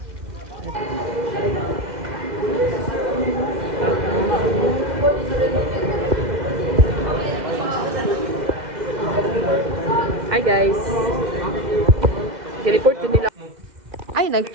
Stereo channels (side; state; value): left; late; 2.1 ms